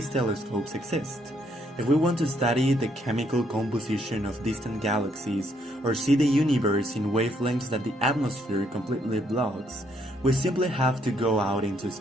telescopes exist. If we want to study the chemical composition of distant galaxies or see the universe in wavelengths that the atmosphere completely blocks, we simply have to go out into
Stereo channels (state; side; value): normal; both; correlation 0.71